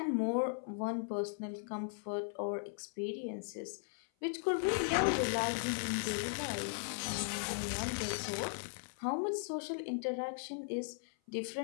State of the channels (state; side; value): silent; right; 53 dB below the other